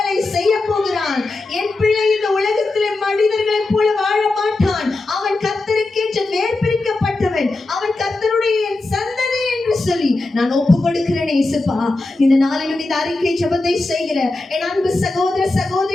செய்ய போகிறான். என் பிள்ளை இந்த உலகத்திலே மனிதர்களைப் போல வாழ மாட்டான். அவன் கர்த்தருக்கென்று நேர்பிரிக்கப்பட்டவன். அவன் கர்த்தருடைய சந்ததி என்று சொல்லி நான் ஒப்பு கொடுக்கிறேன். இயேசுப்பா, இந்த நாளிலும் இந்த அறிக்கை ஜெபத்தை செய்கிற என் அன்பு சகோதர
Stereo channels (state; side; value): quieter; right; 3.1 dB